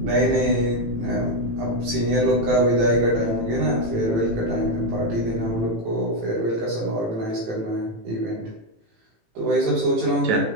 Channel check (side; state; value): left; late; 18 ms